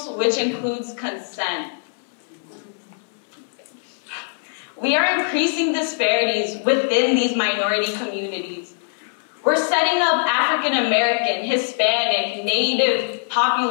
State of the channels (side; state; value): right; silent; 61 dB below the other